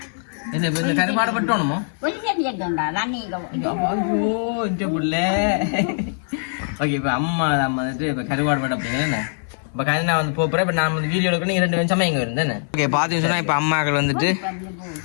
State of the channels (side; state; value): right; silent; 63 dB below the other